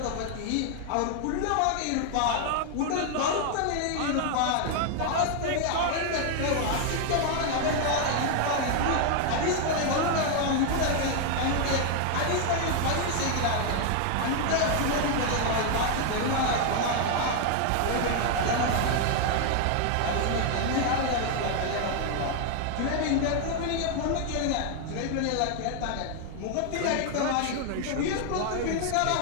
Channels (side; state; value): both; different; correlation 0.00